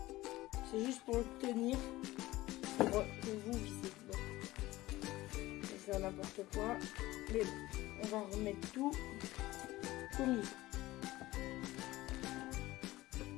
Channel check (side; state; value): right; quieter; 17.8 dB